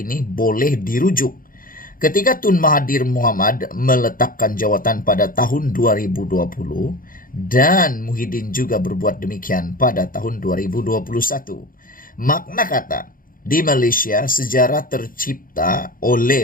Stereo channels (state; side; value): late; right; 0.41 ms